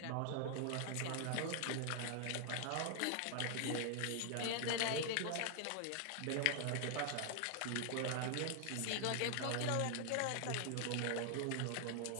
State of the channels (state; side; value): different; both; correlation 0.00